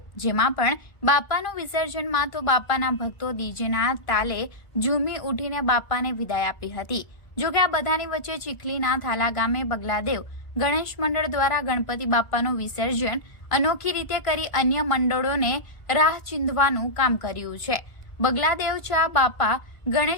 જેમાં પણ બાપાનું વિસર્જનમાં તો બાપાના ભક્તો ડીજેના તાલે ઝૂમી ઉઠીને બાપાને વિદાય આપી હતી। જોકે આ બધાની વચ્ચે ચીખલીના થાલા ગામે બગલાદેવ ગણેશ મંડળ દ્વારા ગણપતિ બાપાનું વિસર્જન અનોખી રીતે કરી અન્ય મંડળોને રાહ ચીંધવાનું કામ કર્યું છે। બગલાદેવ ચા બાપા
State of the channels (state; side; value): late; right; 1.5 ms